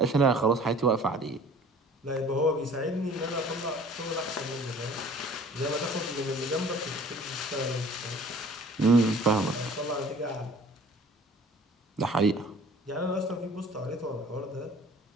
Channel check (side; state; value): both; normal; correlation 0.50